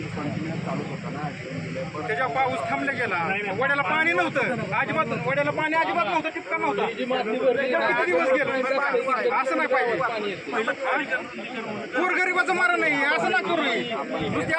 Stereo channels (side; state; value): both; identical; correlation 1.00